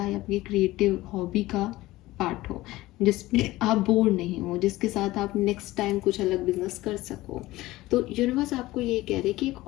या आपकी क्रिएटिव हॉबी का पार्ट हो, जिसमें आप बोर नहीं हो, जिसके साथ आप नेक्स्ट टाइम कुछ अलग बिजनेस कर सको। तो यूनिवर्स आपको ये कह रहे कि एक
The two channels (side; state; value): right; quieter; 17.9 dB